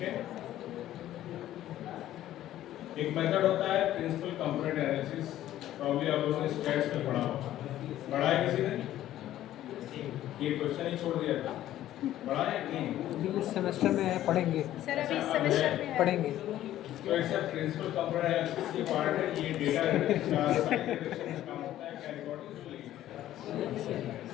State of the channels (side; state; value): right; quieter; 13.2 dB